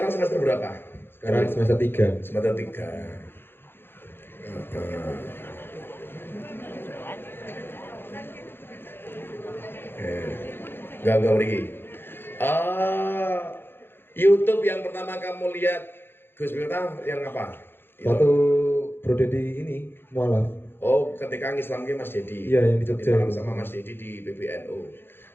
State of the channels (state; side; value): late; right; 0.10 ms